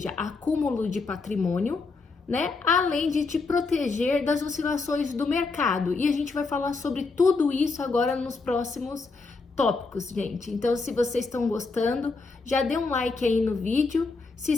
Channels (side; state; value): right; quieter; 4.1 dB